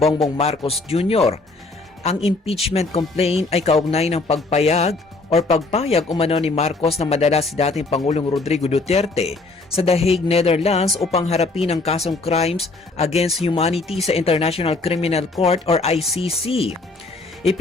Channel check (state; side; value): quieter; right; 3.4 dB